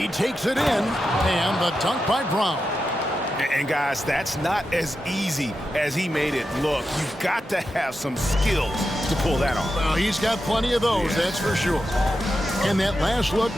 takes it in, and the dunk by Brown. And guys, that's not as easy as he made it look. You've got to have some skills to pull that off. Well, he's got plenty of those, that's for sure. And that last look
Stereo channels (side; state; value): both; normal; correlation 0.89